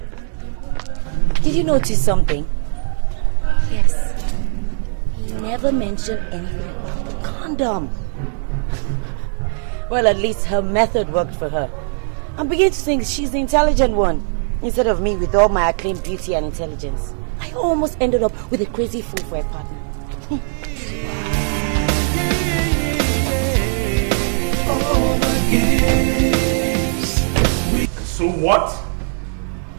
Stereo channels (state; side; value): silent; left; 57 dB below the other